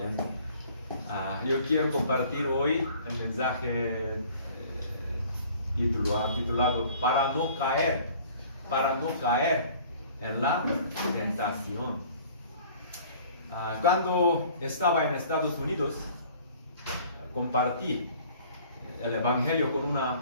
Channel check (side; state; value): both; inverted; correlation -0.51